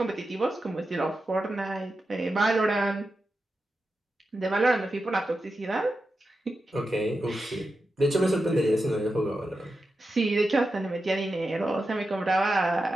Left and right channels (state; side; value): normal; both; correlation 0.90